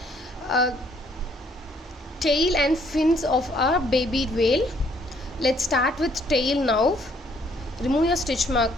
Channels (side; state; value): both; normal; correlation 0.65